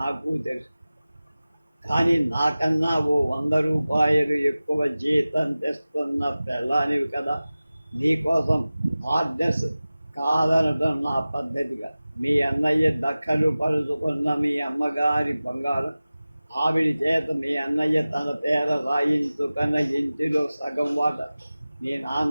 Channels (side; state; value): both; inverted; correlation -0.97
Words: తెలుసు. కానీ నాకన్నా ఓ 100 రూపాయలు ఎక్కువ జీతం తెస్తున్న పెళ్ళానివి కదా. నీకోసం ఆర్డర్స్ కాదనడం నా పద్ధతిగా. మీ అన్నయ్య దక్కలు పరుచుకున్న మీ అమ్మగారి బంగారం, ఆవిడ చేత మీ అన్నయ్య తన పేర రాయించుకున్న ఇంటిలో సగం వాట, మీ